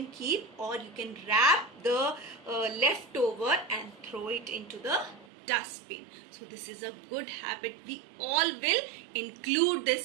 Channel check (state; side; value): drops out; left; at 5.2 s